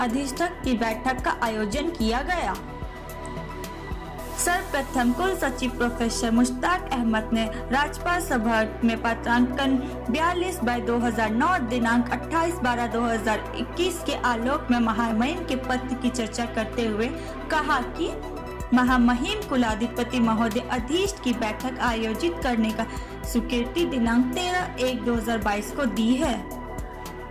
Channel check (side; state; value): both; identical; correlation 1.00